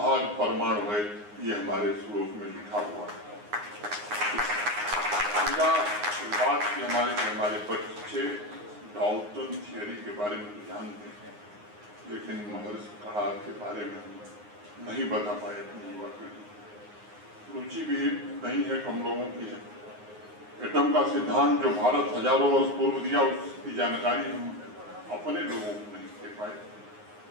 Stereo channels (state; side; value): late; left; 9.6 ms